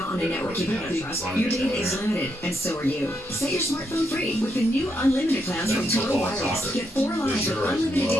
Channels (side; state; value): both; normal; correlation 0.79